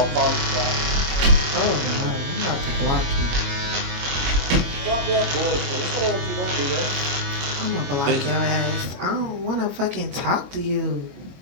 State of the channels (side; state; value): left; late; 22 ms